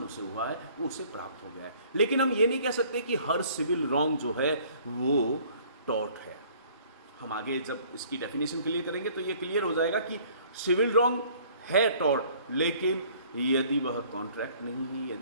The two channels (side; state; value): both; inverted; correlation -0.56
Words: उसे हुआ है वो उसे प्राप्त हो गया है। लेकिन हम ये नहीं कह सकते कि हर सिविल रॉन्ग जो है वो टॉर्ट है। हम आगे जब इसकी डेफिनेशन क्लियर करेंगे तो ये क्लियर हो जाएगा कि सिविल रॉन्ग है टॉर्ट, लेकिन यदि वह कॉन्ट्रैक्ट नहीं है,